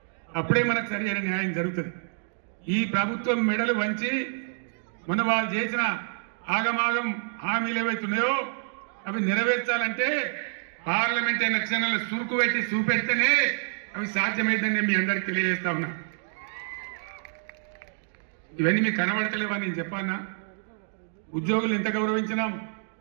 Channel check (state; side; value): silent; left; digital silence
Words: అప్పుడే మనకు సరైన న్యాయం జరుగుతుంది. ఈ ప్రభుత్వం మెడలు వంచి మొన్న వాళ్ళు చేసిన ఆగమాగం హామీలు ఏవైతున్నాయో అవి నెరవేర్చాలంటే పార్లమెంట్ ఎలక్షన్లలో సురుకు పెట్టి చూపెడితేనే అవి సాధ్యమైందని నేను మీ అందరికి తెలియజేస్తా ఉన్నా. ఇవన్నీ మీకు కనబడతలేవని నేను చెప్పానా? ఉద్యోగులు ఎంత గౌరవించినాం,